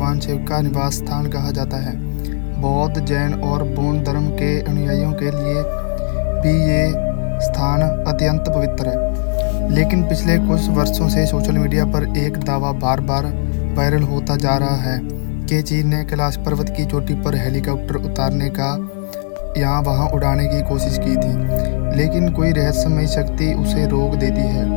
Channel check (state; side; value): silent; right; digital silence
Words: शिव का निवास स्थान कहा जाता है। बौद्ध, जैन और बौद्ध धर्म के अनुयायियों के लिए भी ये स्थान अत्यंत पवित्र है। लेकिन पिछले कुछ वर्षों से सोशल मीडिया पर एक दावा बार बार वायरल होता जा रहा है कि चीन ने कैलाश पर्वत की चोटी पर हेलीकॉप्टर उतारने का यहाँ वहाँ उड़ाने की कोशिश की थी, लेकिन कोई रहस्यमयी शक्ति उसे रोक देती है।